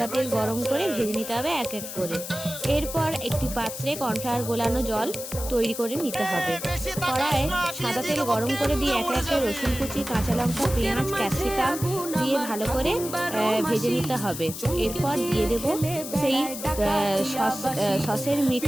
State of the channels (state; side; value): noise; left; hiss, 9 dB below the sound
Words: তেল গরম করে ভেজে নিতে হবে এক এক করে। এরপর একটি পাত্রে কর্নফ্লাওয়ার গোলানো জল তৈরি করে নিতে হবে। কড়াইয়ে সাদা তেল গরম করে দিয়ে একে একে রসুন কুচি, কাঁচা লঙ্কা, পেঁয়াজ, ক্যাপসিকাম দিয়ে ভালো করে ভেজে নিতে হবে। এরপর দিয়ে দেব সেই সসের